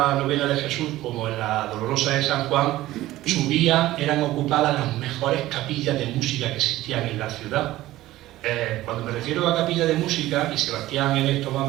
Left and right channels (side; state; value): left; quieter; 16.1 dB